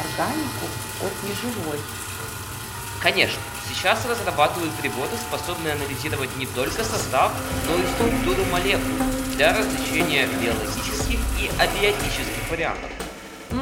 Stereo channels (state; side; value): identical; both; correlation 1.00